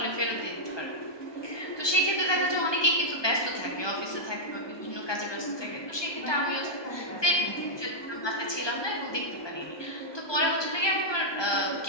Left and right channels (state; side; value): late; right; 1.2 ms